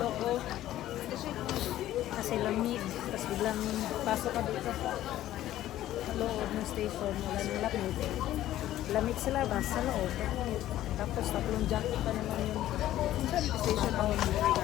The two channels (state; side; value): quieter; right; 13.6 dB